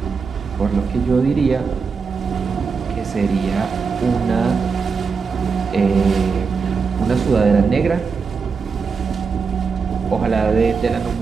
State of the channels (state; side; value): quieter; left; 5.3 dB